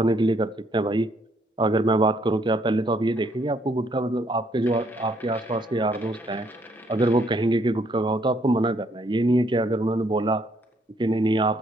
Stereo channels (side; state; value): both; normal; correlation 0.69